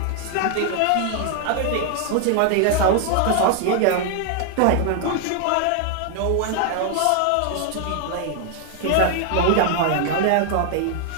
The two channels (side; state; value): both; different; correlation 0.00